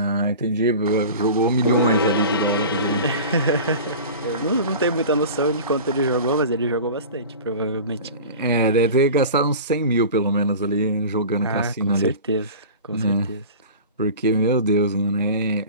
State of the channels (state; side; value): inverted; both; correlation -0.36